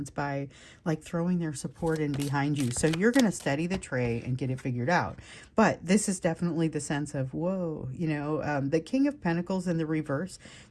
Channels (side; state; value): both; identical; correlation 1.00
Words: by like throwing their support in behind you. So you're going to steady the tray and get it figured out. But this is definitely the sense of, whoa, the King of Pentacles in the reverse,